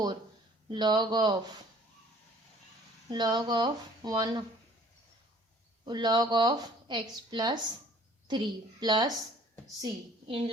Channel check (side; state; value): both; normal; correlation 0.54